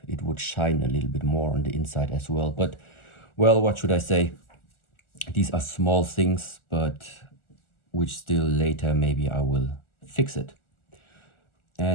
it would shine a little bit more on the inside as well. But, well, what should I say? These are small things, but which still later maybe I will fix it.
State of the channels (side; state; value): right; late; 1.4 ms